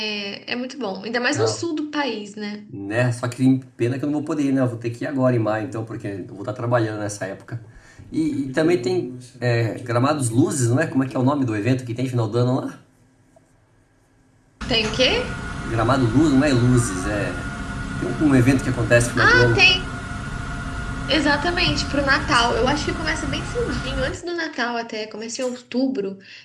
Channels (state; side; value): identical; both; correlation 1.00